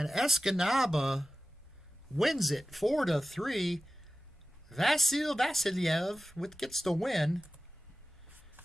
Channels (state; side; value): normal; both; correlation 0.95